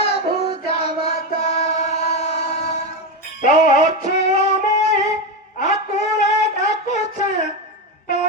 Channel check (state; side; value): normal; both; correlation 0.13